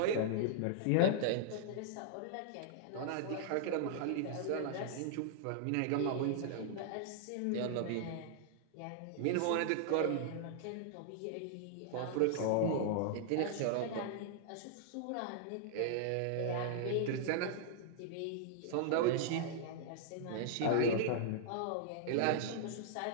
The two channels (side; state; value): both; different; correlation -0.01